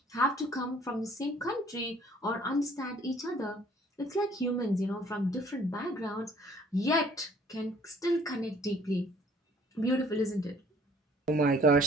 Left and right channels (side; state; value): both; normal; correlation 0.57